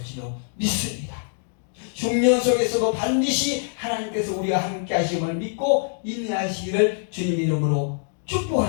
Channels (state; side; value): silent; right; digital silence